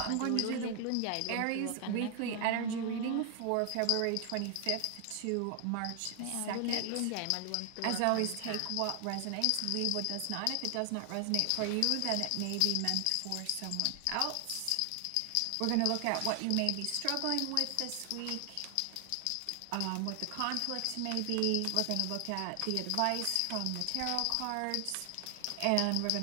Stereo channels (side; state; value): both; different; correlation 0.00